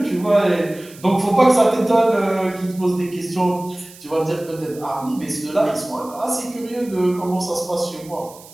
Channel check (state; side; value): noise; right; hiss, 21 dB below the sound